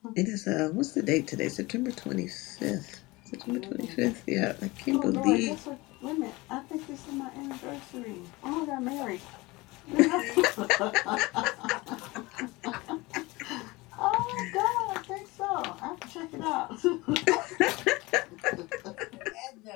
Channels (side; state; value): right; quieter; 22.3 dB